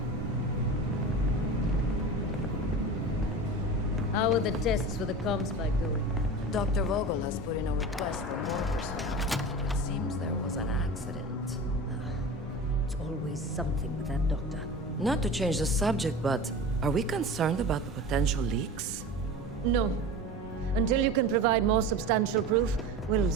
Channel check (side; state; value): both; normal; correlation 0.32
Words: How are the tests for the comm spike going? Dr. Vogel has put in a request for more personnel. It seems there was an accident. It's always something with that doctor. Not to change the subject, but are we concerned about the potential leaks? No. Until you can provide more substantial proof, we'll